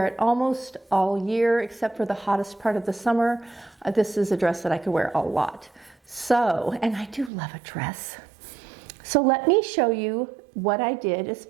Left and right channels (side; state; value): left; drops out; at 7.3 s